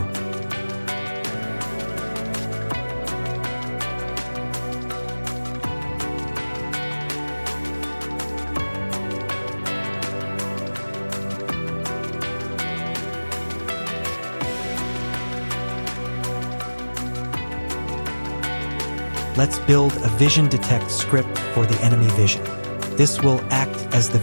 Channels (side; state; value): both; inverted; correlation -1.00